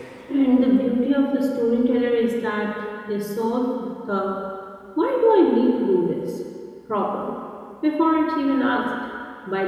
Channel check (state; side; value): identical; both; correlation 1.00